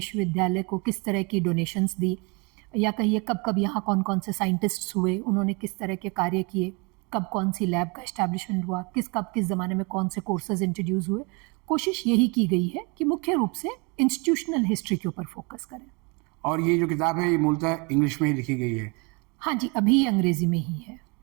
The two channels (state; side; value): quieter; left; 30.4 dB